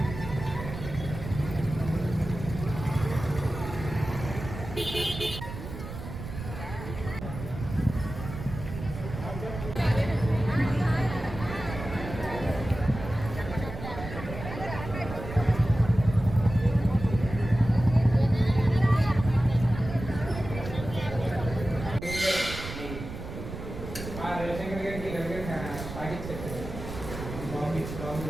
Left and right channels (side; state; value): right; noise; rumble, 9 dB below the sound